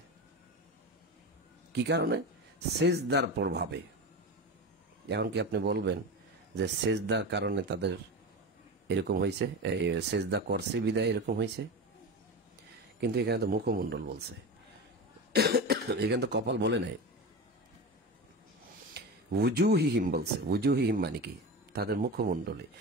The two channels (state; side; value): normal; both; correlation 0.25